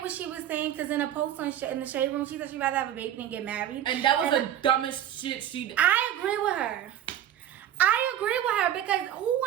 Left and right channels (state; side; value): quieter; left; 11.1 dB